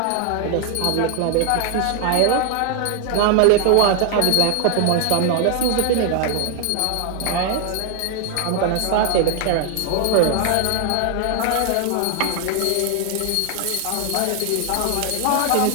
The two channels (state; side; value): different; both; correlation 0.00